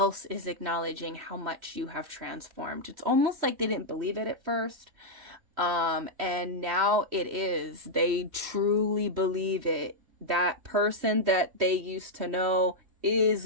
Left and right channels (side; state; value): left; late; 3.1 ms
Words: is acknowledging how much you have transformed. It's almost like they didn't believe it at first. And now it is. They truly believe it. That person that they used to know is